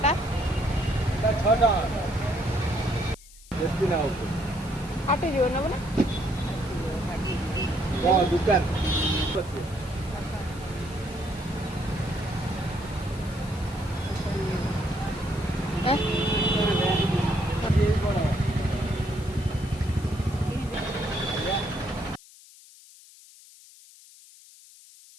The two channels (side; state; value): left; noise; hiss, 22 dB below the sound